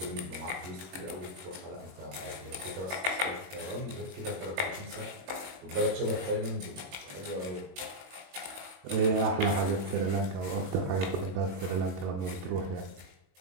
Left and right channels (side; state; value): left; late; 21 ms